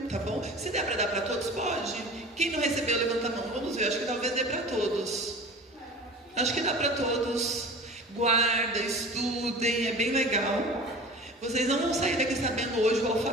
tá bom? Se der para dar para todos, pode. Quem não recebeu, levanta a mão. Vamos ver, acho que talvez dê para todos. Acho que dá para todos. Guarda, estudem, é bem legal. Vocês não vão sair daqui sabendo hoje o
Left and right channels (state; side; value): normal; both; correlation 0.38